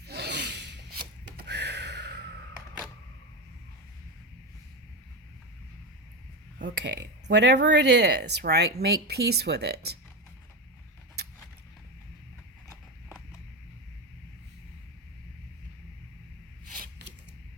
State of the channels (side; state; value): both; normal; correlation 0.15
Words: Okay, whatever it is, right, make peace with it.